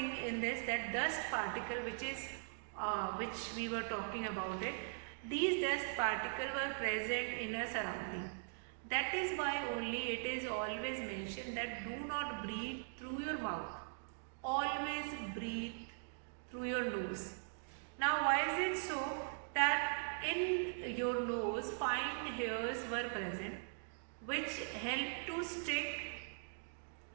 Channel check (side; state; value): left; silent; digital silence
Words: in this, that dust particle which we were talking about it. These dust particles were present in a surrounding. That is why only it is always mentioned that do not breathe through your mouth. Always breathe through your nose. Now why is it so? That in your nose fine hairs were present which help to stick